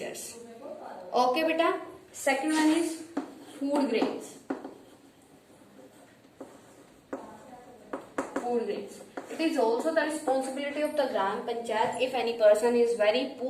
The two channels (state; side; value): identical; both; correlation 1.00